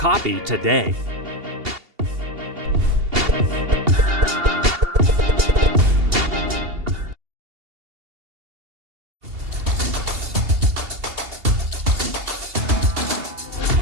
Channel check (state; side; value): late; left; 2.8 ms